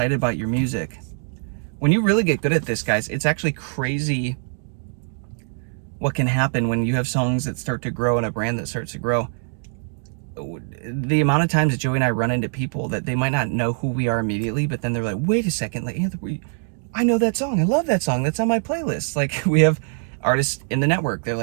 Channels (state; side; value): silent; left; 56 dB below the other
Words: about your music. When you really get good at this, guys, it's actually crazy what can happen when you have songs that start to grow and a brand that starts to grow. The amount of times that Joey and I run into people that they might not know who we are immediately, but then they're like, wait a second, like, Anthony, I know that song. I love that song. That's on my playlist. Like, we have artists in the network. They're